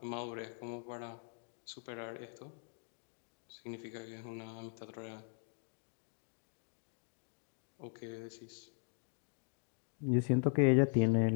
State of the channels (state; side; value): silent; right; 51 dB below the other